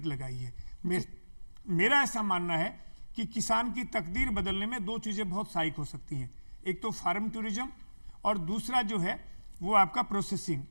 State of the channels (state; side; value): inverted; both; correlation -1.00